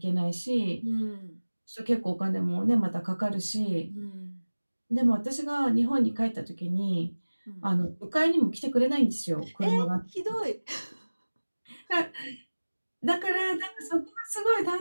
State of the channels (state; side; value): inverted; both; correlation -1.00